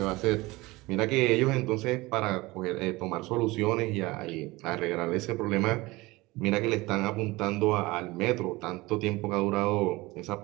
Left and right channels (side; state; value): left; quieter; 21.2 dB